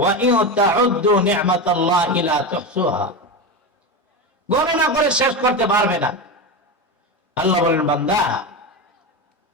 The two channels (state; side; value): normal; both; correlation 0.18